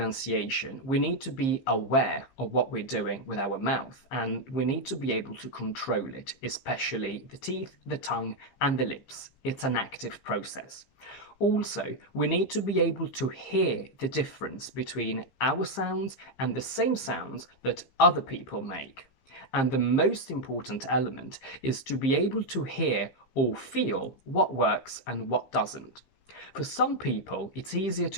we need to be aware of what we're doing with our mouth, and we need to be able to control it, especially the teeth, the tongue, and the lips. It's an active process. Also, we need to be able to hear the difference between our sounds and the same sounds that other people make. And the most important element is to be able to hear or feel what works and what doesn't. For some people, it's easier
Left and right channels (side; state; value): right; late; 15 ms